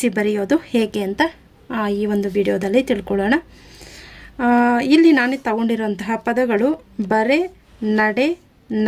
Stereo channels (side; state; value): both; identical; correlation 1.00